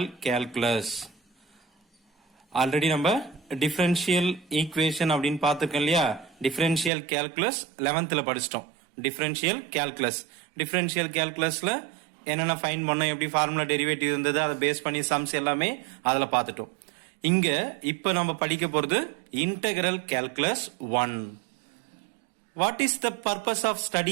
calculus. Already நம்ம differential equation அப்படின்னு பார்த்திருக்கோம் இல்லையா? differential calculus 11th படிச்சிட்டோம். differential calculusல என்னென்ன ஃபைண்ட் பண்ணோம், எப்படி ஃபார்முலா டெரிவேட்டிவ் இருந்தது, அதை பேஸ் பண்ணி சம்ஸ் எல்லாமே அதுல பார்த்துட்டோம். இங்க இப்ப நம்ம படிக்க போறது integral calculus 1. What is the purpose of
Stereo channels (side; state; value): left; drops out; at 6.9 s